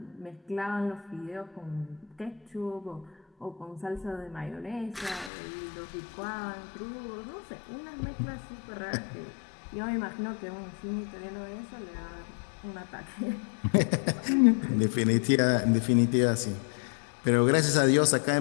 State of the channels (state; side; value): drops out; right; at 5.3 s